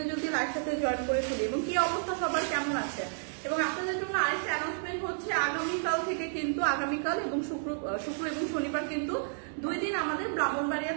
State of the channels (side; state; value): left; silent; digital silence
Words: জলদি লাইভ সাথে জয়েন করে ফেলি। এবং কি অবস্থা সবার কেমন আছে? এবং আপনাদের জন্য আরেকটা অ্যানাউন্সমেন্ট হচ্ছে, আগামীকাল থেকে কিন্তু আগামীকাল এবং শুক্র এবং শনিবার কিন্তু 2 দিন আমাদের